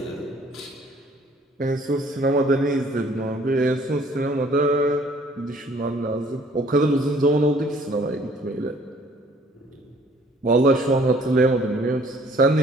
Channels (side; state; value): both; normal; correlation 0.58